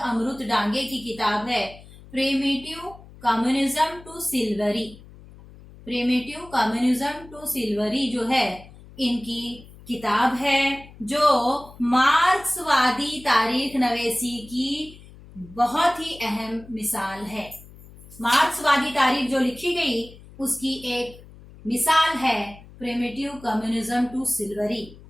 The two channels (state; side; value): noise; left; hum, 20 dB below the sound